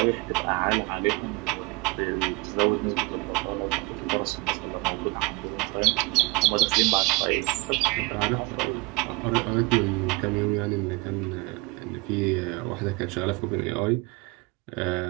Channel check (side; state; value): left; quieter; 26.1 dB